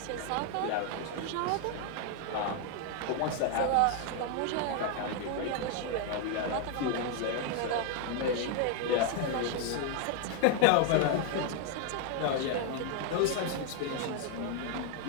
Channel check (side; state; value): both; different; correlation 0.00